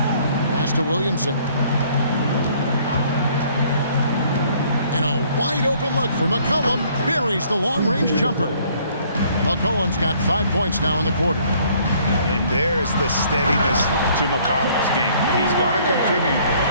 Pass to Williamson. And a wide open look for McCollum. Buries the long-range jumper. McCollum's got 5 points now in the quarter. And there's the steadiness to McCollum's game. He's going to contribute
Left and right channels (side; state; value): both; inverted; correlation -0.60